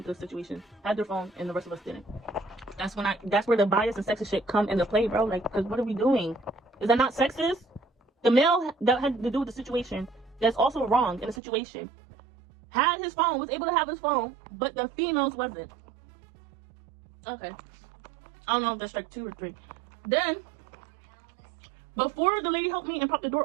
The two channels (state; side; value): drops out; left; at 11.4 s